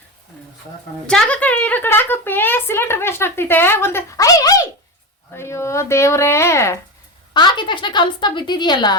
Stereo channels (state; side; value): normal; both; correlation 0.20